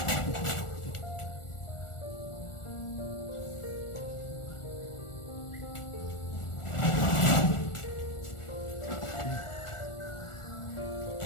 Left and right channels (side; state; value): right; late; 1.4 ms